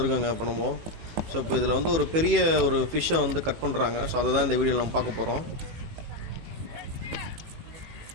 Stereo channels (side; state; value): left; late; 18 ms